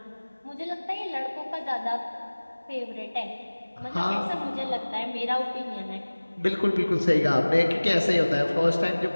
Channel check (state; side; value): inverted; both; correlation -1.00